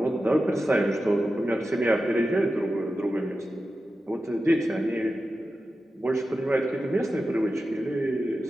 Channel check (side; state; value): both; normal; correlation 0.92